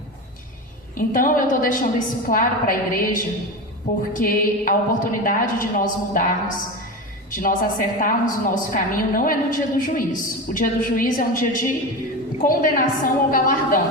Então eu estou deixando isso claro para a igreja, porque a oportunidade de nós mudarmos, de nós acertarmos o nosso caminho, não é no dia do juízo. O dia do juízo é um dia de condenação ou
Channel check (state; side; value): normal; both; correlation 0.23